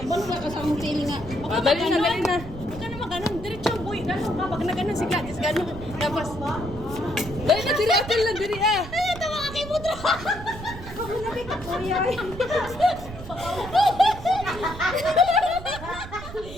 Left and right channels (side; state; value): right; noise; rumble, 12 dB below the sound